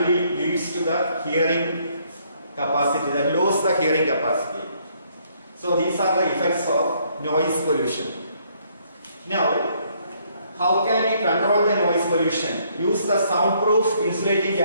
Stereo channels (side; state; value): both; inverted; correlation -0.68